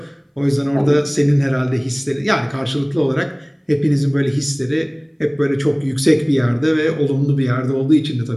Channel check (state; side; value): identical; both; correlation 1.00